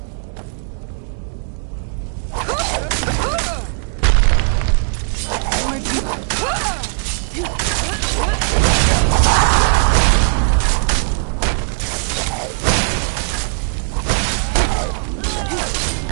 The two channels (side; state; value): left; silent; 67 dB below the other